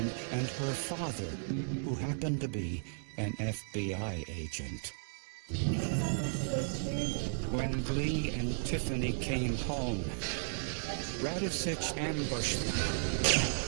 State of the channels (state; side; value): silent; left; digital silence